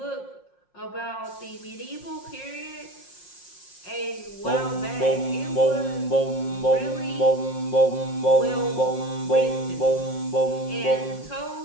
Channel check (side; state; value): right; late; 5.6 ms